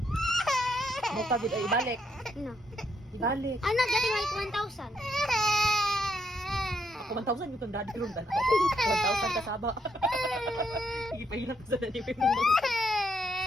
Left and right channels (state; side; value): normal; both; correlation 0.76